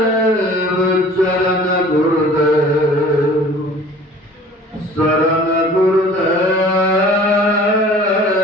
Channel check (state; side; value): normal; both; correlation 0.47